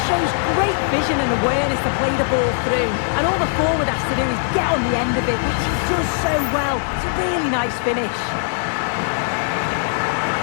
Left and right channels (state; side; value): silent; right; digital silence